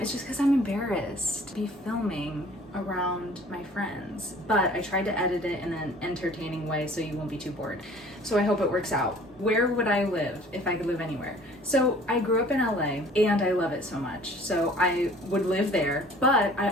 just because I'm embarrassed to be filming around my friends, but I tried to edit it in an entertaining way so you won't be too bored. So I hope it works out. Where would I live if I could live anywhere? So I grew up in LA and I love it so much. So I would live there, but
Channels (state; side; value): normal; both; correlation 0.51